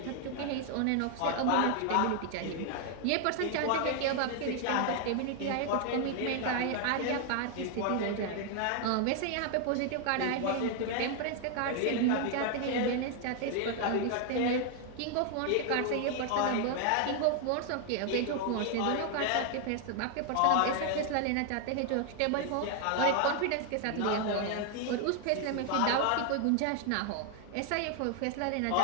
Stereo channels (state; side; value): different; both; correlation 0.00